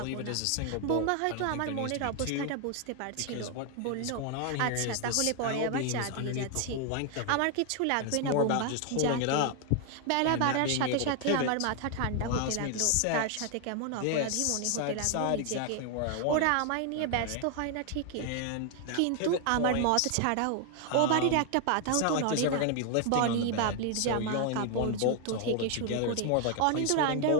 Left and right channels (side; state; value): both; different; correlation 0.00